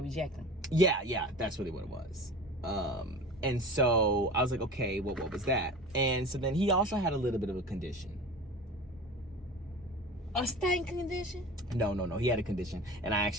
reject him. Yeah, that's really what it was. And so I was like, okay, well, what was that? And so then he also had a little bit of a condition. A stain condition? No. He had a condition, and I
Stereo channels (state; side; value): normal; both; correlation 0.35